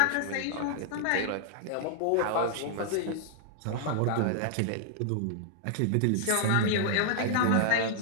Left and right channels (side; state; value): both; different; correlation -0.01